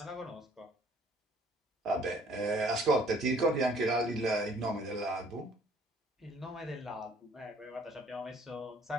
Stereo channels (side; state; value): both; normal; correlation 0.58